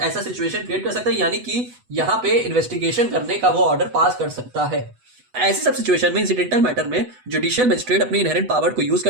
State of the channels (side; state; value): left; late; 8.1 ms